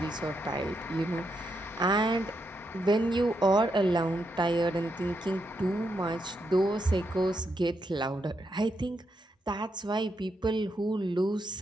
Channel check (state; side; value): normal; both; correlation 0.81